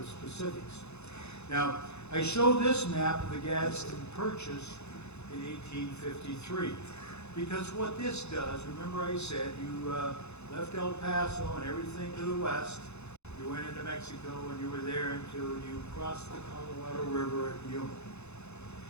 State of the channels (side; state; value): right; late; 0.81 ms